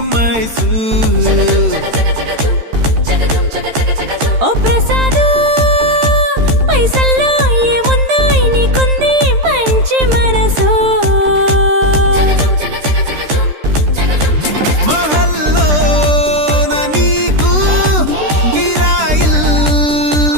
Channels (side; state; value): left; late; 13 ms